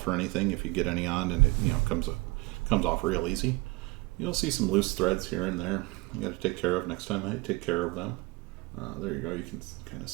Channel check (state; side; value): quieter; left; 23.5 dB